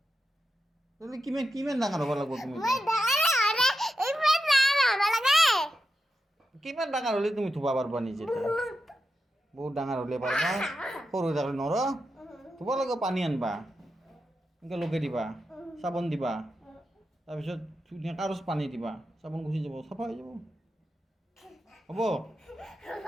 তুমি কিমান কিমান ডাঙৰ হ'ব লাগিব তুমি মই ডাঙৰ হ'লে ইমান ডাঙৰ হ'ব লাগে কিমান ডাঙৰ হ'লে তুমি ধুবা পাৰবা নিজে বহুত ডাঙৰ হ'লে পাৰবা সৰু থাকলে নৰ ধুব লাগিব পানী আনবা এনেকৈ লগাই দিবা চাবোন দিবা তাৰপিছত ধুনীয়া কাগজ পানী দিবা চাবোন গুচি যাব চাফা হৈ যাব হ'ব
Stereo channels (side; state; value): both; normal; correlation 0.88